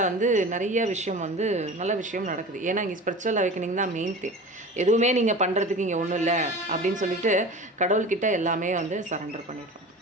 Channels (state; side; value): normal; both; correlation 0.35